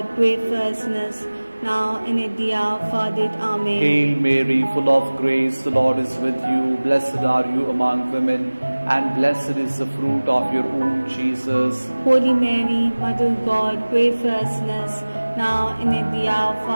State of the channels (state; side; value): inverted; both; correlation -1.00